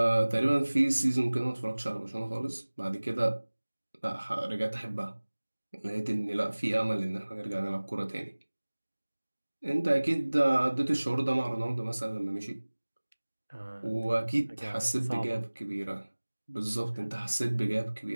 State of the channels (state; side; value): inverted; both; correlation -1.00